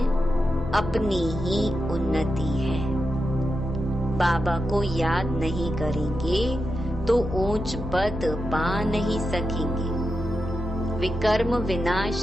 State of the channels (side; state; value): both; normal; correlation 0.88